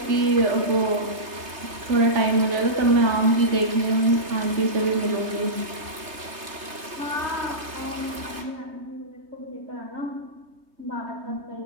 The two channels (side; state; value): left; late; 3.3 ms